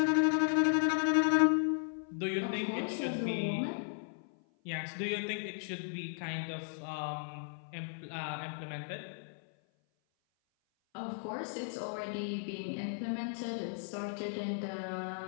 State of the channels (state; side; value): silent; right; 54 dB below the other